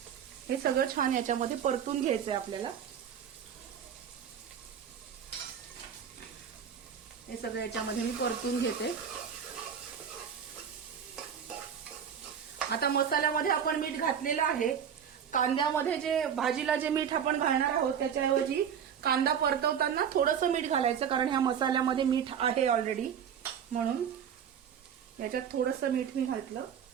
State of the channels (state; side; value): quieter; left; 8.1 dB